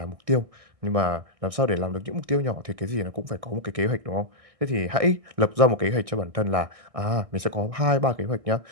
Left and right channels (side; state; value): left; late; 1.6 ms